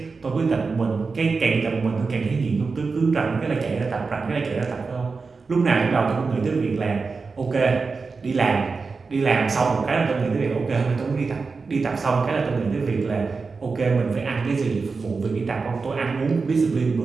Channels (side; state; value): left; quieter; 4.5 dB